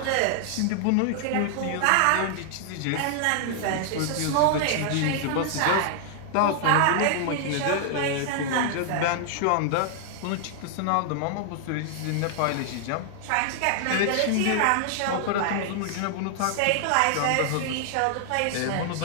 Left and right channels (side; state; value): both; different; correlation 0.00